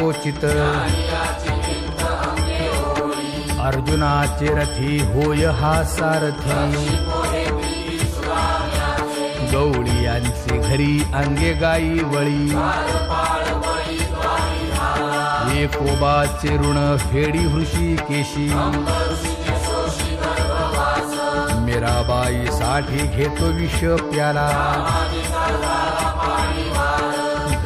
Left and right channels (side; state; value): both; identical; correlation 1.00